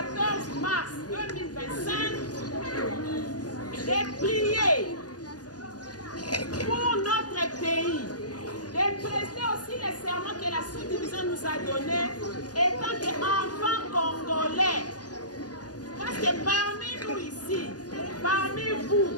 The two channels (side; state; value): right; late; 0.68 ms